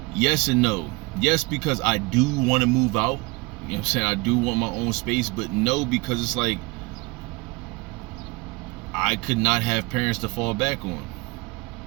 yes and no. Yes, because I do want to move out, you know what I'm saying, I do want my own space. But no, because it's like I could not have parents to fall back on.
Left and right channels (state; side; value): quieter; left; 25.3 dB